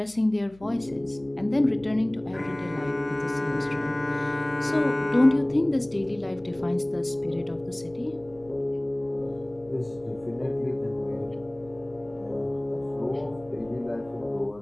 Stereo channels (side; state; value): left; noise; hum, 25 dB below the sound